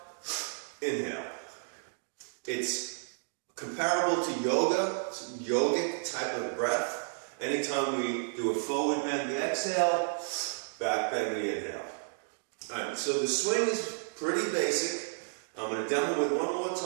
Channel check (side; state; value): left; silent; digital silence